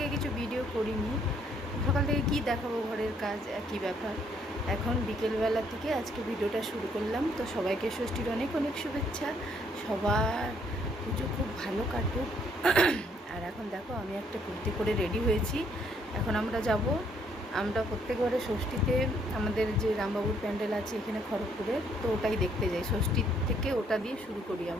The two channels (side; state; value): both; normal; correlation 0.68